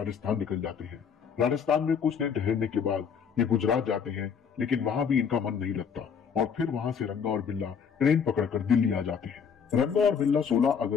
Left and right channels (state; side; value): quieter; right; 6.9 dB